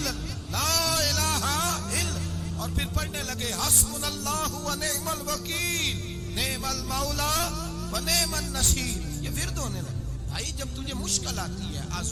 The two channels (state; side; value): identical; both; correlation 1.00